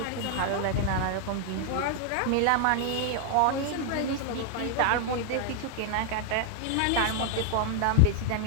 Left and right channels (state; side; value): different; both; correlation 0.00